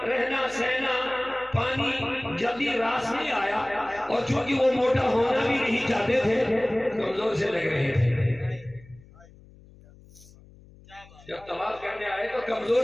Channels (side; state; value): left; noise; hum, 24 dB below the sound